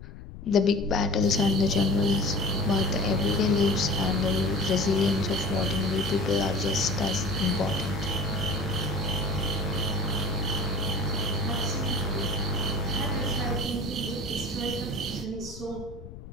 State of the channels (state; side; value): noise; left; rumble, 14 dB below the sound